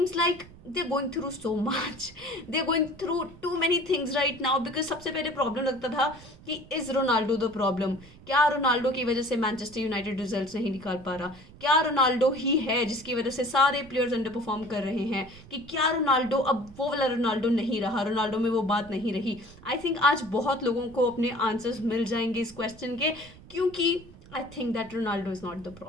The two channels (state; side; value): noise; right; rumble, 20 dB below the sound